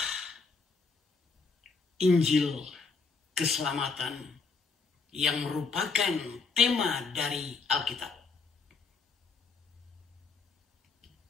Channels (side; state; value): right; quieter; 4.6 dB